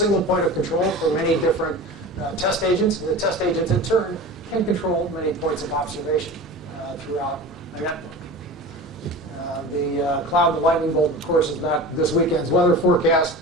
point of control for many different test agents, and the test agents in turn can control many points of observation throughout a network. The cloud and lightning bolt, of course, is not this weekend's weather forecast.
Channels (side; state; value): both; normal; correlation 0.33